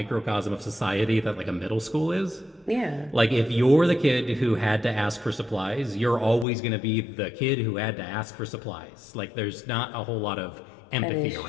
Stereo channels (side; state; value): right; drops out; at 6.5 s